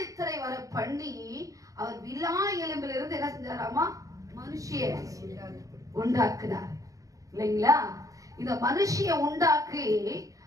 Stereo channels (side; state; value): left; late; 0.16 ms